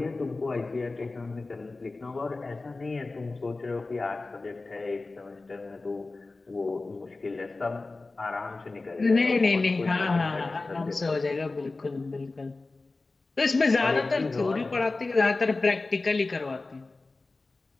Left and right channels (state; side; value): quieter; right; 3.5 dB